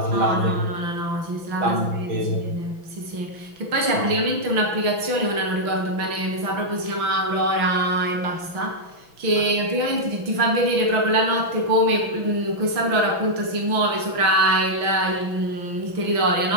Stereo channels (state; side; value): late; left; 6.0 ms